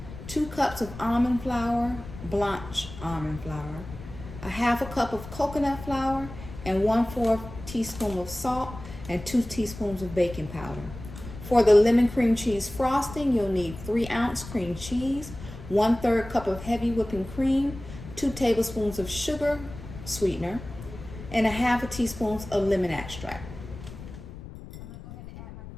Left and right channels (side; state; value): left; noise; rumble, 13 dB below the sound